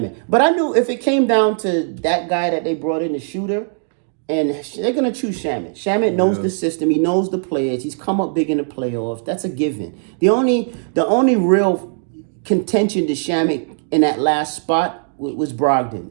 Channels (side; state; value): left; silent; digital silence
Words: But I knew if it came down to that guy that they brought in, the shooter, and they're going to choose Shamet. Shamet knows the system. He knows the players. He's come up big in the playoffs. That's a given. The only real contention to Shamet in that last spot was Brogdon.